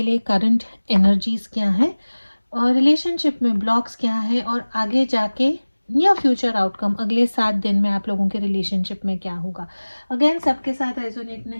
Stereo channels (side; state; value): both; inverted; correlation -1.00